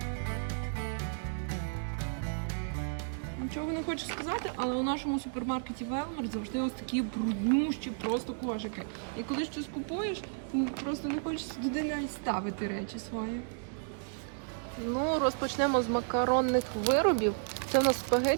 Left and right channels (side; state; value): left; silent; digital silence